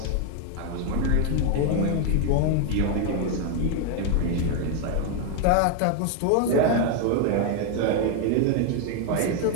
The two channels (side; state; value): both; different; correlation 0.01